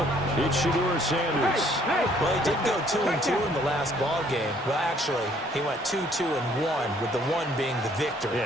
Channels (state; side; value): normal; both; correlation 0.62